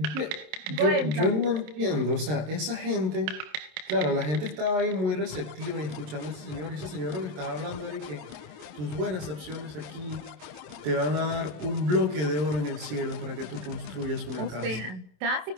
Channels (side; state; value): left; late; 27 ms